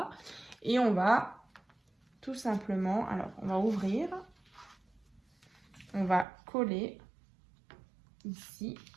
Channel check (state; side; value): drops out; left; at 6.2 s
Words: Et on va tout simplement, alors, on va ouvrir. On va coller ici.